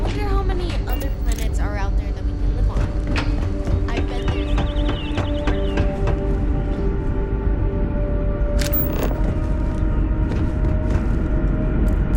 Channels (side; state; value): both; identical; correlation 1.00